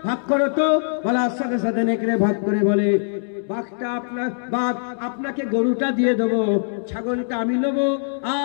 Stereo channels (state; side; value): silent; right; digital silence